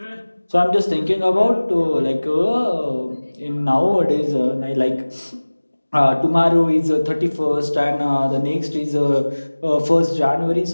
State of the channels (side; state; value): both; inverted; correlation -1.00